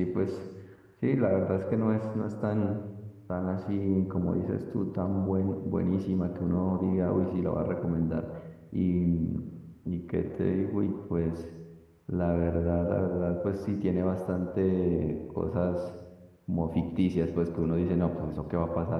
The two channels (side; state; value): both; identical; correlation 1.00